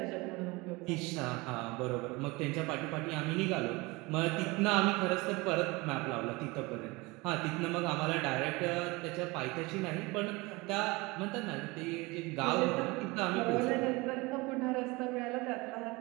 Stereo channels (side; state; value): left; quieter; 23.9 dB